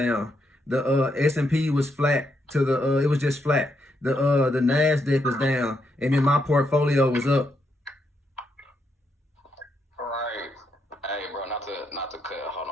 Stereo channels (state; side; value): normal; both; correlation 0.79